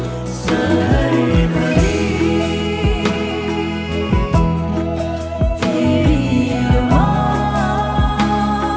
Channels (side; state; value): both; identical; correlation 1.00